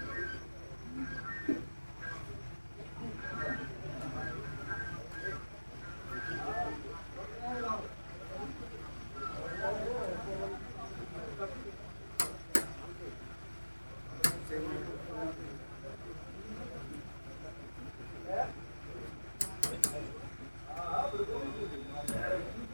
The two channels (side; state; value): both; inverted; correlation -1.00